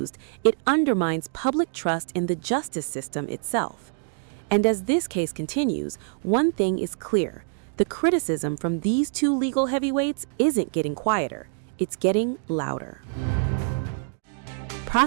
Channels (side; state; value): left; silent; 61 dB below the other